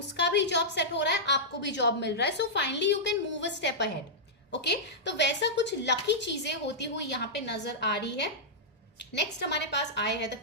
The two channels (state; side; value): normal; both; correlation -0.10